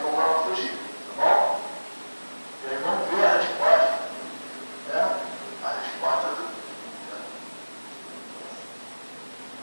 como ela fugir, tá bom? E aí vamos ver a resposta, né? A resposta do...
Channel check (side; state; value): both; inverted; correlation -1.00